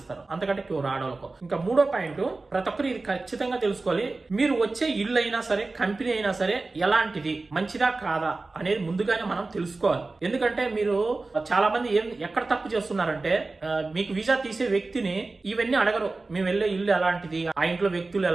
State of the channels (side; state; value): left; quieter; 3.5 dB